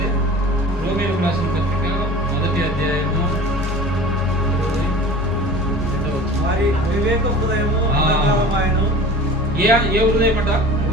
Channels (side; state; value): both; normal; correlation 0.40